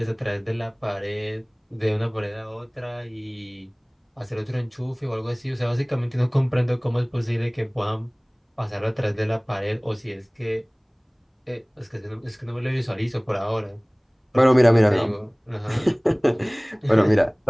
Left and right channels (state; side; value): identical; both; correlation 1.00